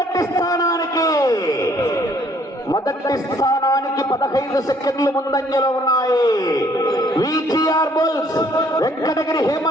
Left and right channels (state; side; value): normal; both; correlation 0.63